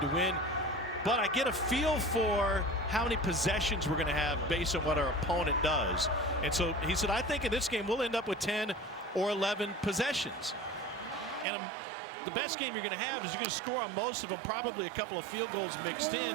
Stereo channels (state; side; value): drops out; left; at 11.5 s